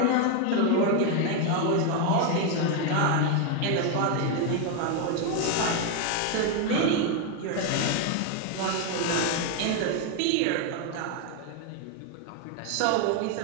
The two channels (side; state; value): both; different; correlation 0.01